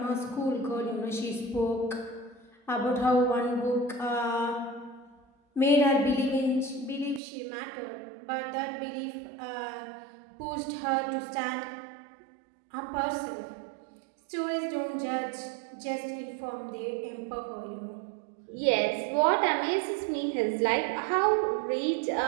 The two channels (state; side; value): drops out; left; at 7.2 s